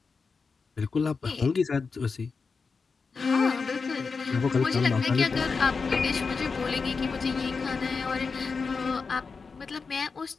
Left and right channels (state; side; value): quieter; right; 4.8 dB